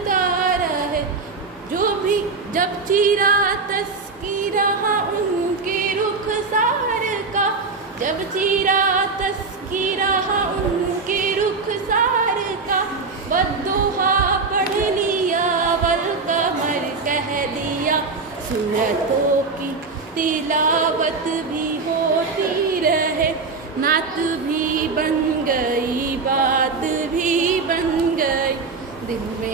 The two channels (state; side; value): quieter; left; 4.3 dB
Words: रहे। जो भी जब चीरा तस्कीरा उनके रुखसार का, जब चीरा तस्कीरा उनके रुखसार का, बद्दुहा पढ़ लिया वल कमर कह दिया। सूरतों की तिलावत भी होती रहे, नात भी बन गई बात भी बन गई। दिल